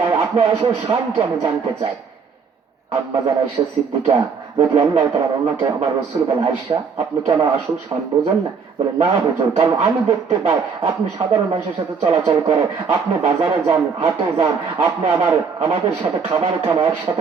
আপনার আসল শান কি আমি জানতে চাই। আম্মাজান আয়েশা সিদ্দিকা যদি আল্লাহ তাআলা ওনাকে আমার রাসূল বলে, আয়েশা আপনি কি আমার আসল শান বোঝেন না? বলে, না হুজুর, কারণ আমি দেখতে পাই আপনি সাধারণ মানুষের সাথে চলাচল করেন, আপনি বাজারে যান, হাটে যান, আপনি আমাদের সাথে খাবার খান,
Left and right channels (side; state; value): left; quieter; 5.7 dB